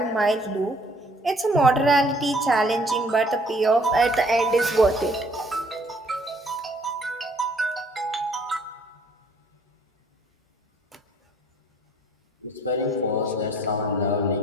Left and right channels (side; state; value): both; normal; correlation 0.60